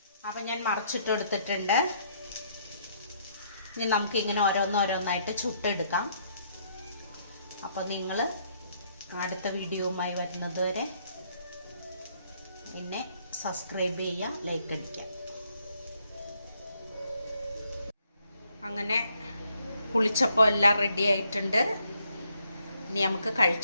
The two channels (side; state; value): both; inverted; correlation -0.70